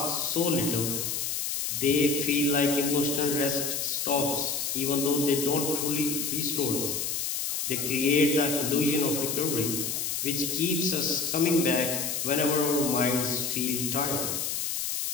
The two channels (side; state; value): left; noise; hiss, 1 dB below the sound